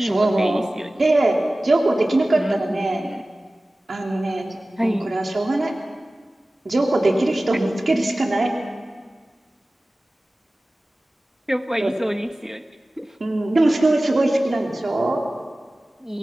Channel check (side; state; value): both; normal; correlation 0.97